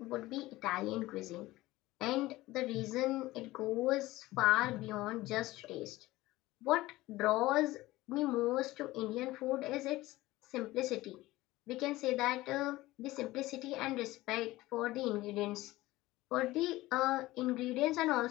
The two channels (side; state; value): right; quieter; 18.2 dB